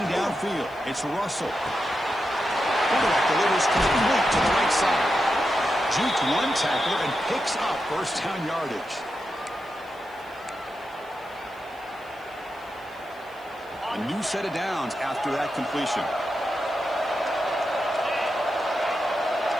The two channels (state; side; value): noise; left; hiss, 29 dB below the sound